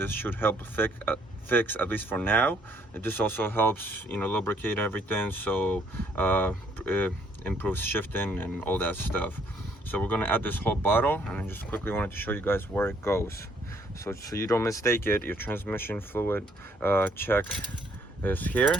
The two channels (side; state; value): both; normal; correlation 0.66